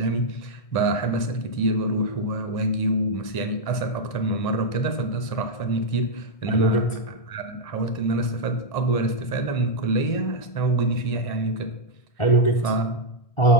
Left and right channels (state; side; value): late; right; 1.6 ms